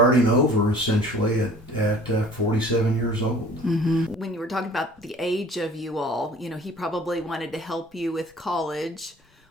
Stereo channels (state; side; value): normal; both; correlation 0.49